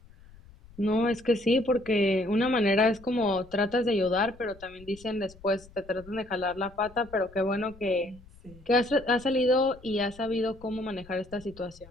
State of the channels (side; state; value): left; noise; rumble, 23 dB below the sound